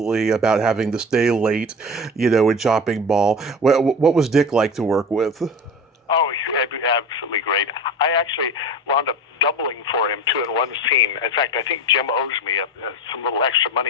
about having to stay late, in Chopping Mall. What was Dick like to work with? Oh, absolutely great. I actually wound up doubling for him, too, in one scene. In fact, I think Jim owes me some little extra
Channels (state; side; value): normal; both; correlation 0.31